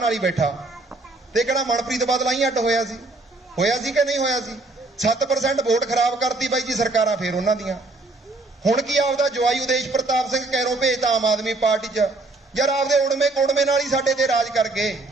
ਹੀ ਬੈਠਾ। ਤੇ ਕਹਿੰਦਾ ਮਨਪ੍ਰੀਤ ਬਾਦਲ ਆਈ ਅੱਡ ਹੋਇਆ ਸੀ ਕਿ ਨਹੀਂ ਹੋਇਆ ਸੀ? 7% ਵੋਟ ਖਰਾਬ ਕਰਤੀ ਬਾਈ ਜੀ ਸਰਕਾਰਾਂ ਫੇਰ ਉਹਨਾਂ ਦੀਆਂ। ਹੁਣ ਕੀ ਆਪਦਾ ਜਵਾਈ ਉਦੇਸ਼ ਪ੍ਰਤਾਪ ਸਿੰਘ ਕੈਰੋਂ ਭੇਜਤਾ ਆਮ ਆਦਮੀ ਪਾਰਟੀ 'ਚ। ਯਾਰ ਆਪਦੇ ਉੜਵੇਂ ਕੋੜਵੇਂ ਨਾਲ ਹੀ ਸਾਡੇ ਤੇ ਰਾਜ ਕਰ ਗਏ,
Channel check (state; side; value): quieter; left; 3.1 dB